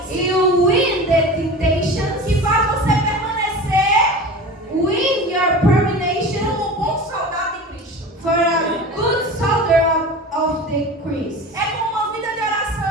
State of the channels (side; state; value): both; normal; correlation 0.34